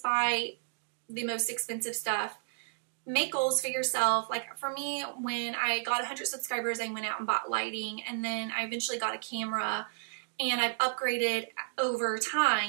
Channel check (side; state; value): left; silent; digital silence